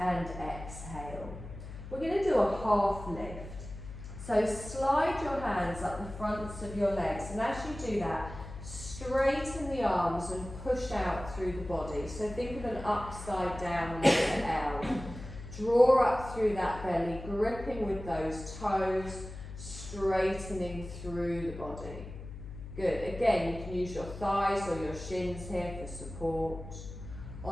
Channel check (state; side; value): noise; left; hum, 11 dB below the sound